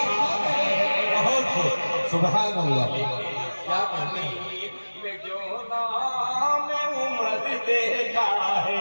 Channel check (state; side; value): inverted; both; correlation -1.00